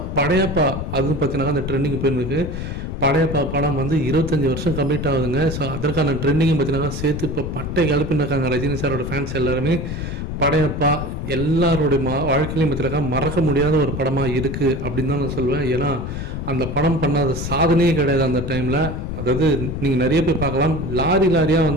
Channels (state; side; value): noise; left; rumble, 5 dB below the sound